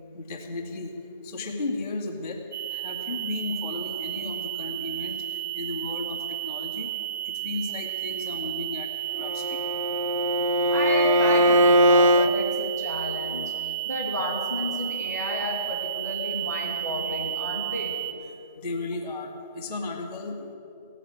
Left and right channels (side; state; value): both; inverted; correlation -0.46